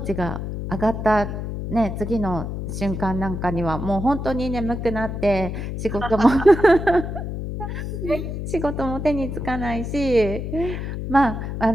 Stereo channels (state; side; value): noise; left; hum, 5 dB below the sound